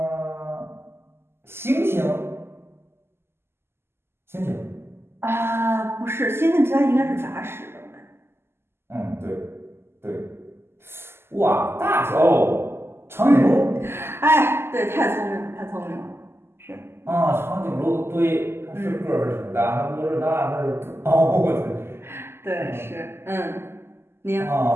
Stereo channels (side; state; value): left; late; 0.12 ms